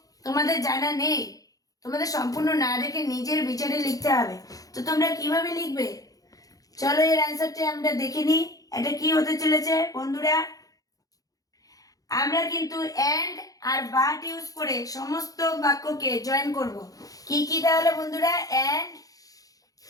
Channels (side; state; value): right; late; 0.17 ms